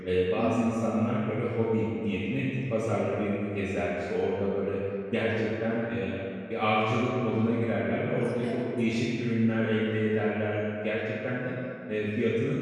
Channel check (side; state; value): both; identical; correlation 1.00